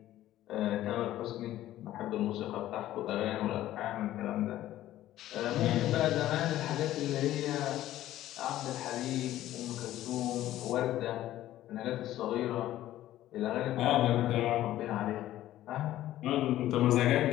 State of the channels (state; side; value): quieter; right; 13.9 dB